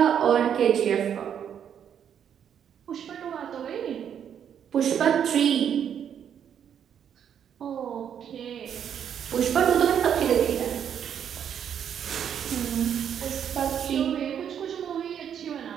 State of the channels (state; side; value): quieter; left; 8.7 dB